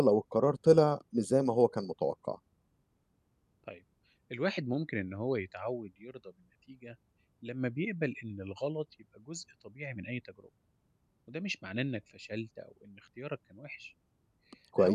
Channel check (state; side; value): identical; both; correlation 1.00